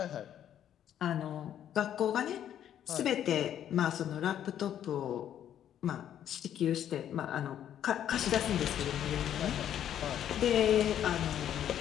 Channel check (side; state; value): right; quieter; 10.4 dB